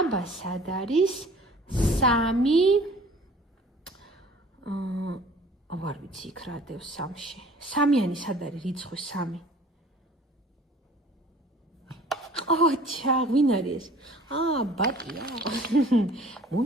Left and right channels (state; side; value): normal; both; correlation 0.50